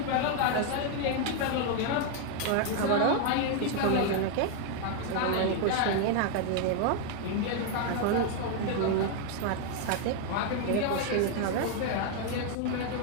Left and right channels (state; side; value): different; both; correlation 0.00